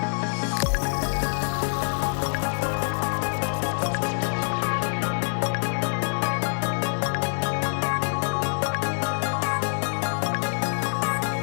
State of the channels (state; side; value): silent; right; digital silence